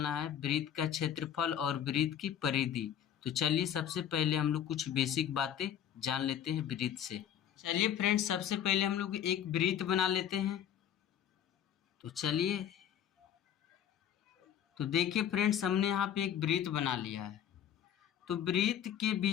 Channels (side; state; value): right; quieter; 9.7 dB